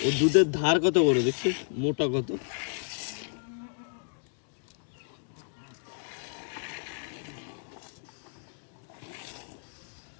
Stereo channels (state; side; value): silent; right; digital silence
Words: ও দুধের ধার কত বড় দেখছিস, মোটা কত।